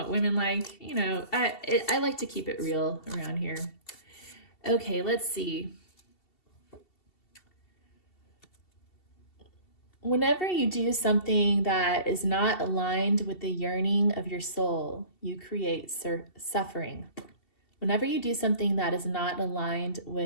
women like. You know, I like to keep it real around here. Okay, let's see. Whenever you do something that is not aligned with the yearning of your soul, you create suffering. Whenever you do something that is not aligned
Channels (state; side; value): late; right; 2.7 ms